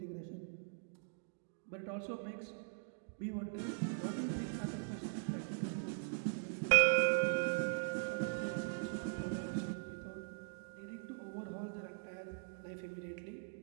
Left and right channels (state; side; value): silent; left; digital silence